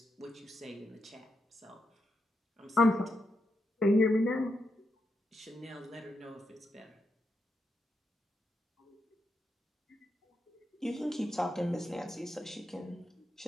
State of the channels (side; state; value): both; normal; correlation 0.83